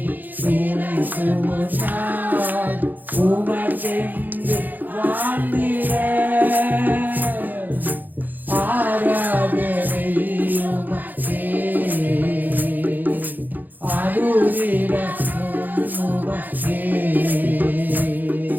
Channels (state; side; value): late; left; 0.085 ms